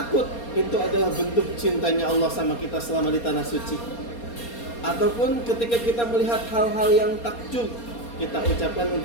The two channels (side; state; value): right; late; 4.3 ms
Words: itu adalah bentuk cintanya Allah sama kita selama di tanah suci. Ataupun ketika kita melihat hal-hal yang takjub, kita ucapkan